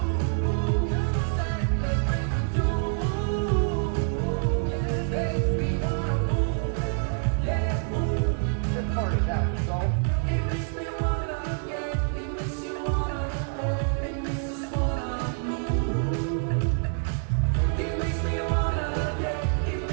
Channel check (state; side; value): silent; left; 60 dB below the other